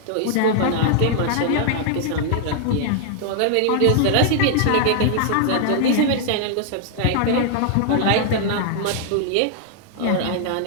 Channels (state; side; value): different; both; correlation 0.00